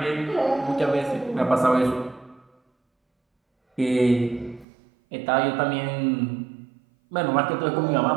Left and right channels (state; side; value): drops out; left; at 4.7 s